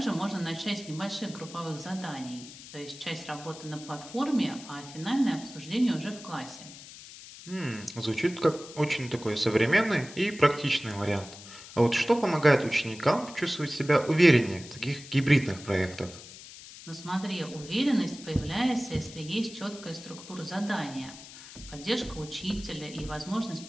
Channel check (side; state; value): left; noise; hiss, 16 dB below the sound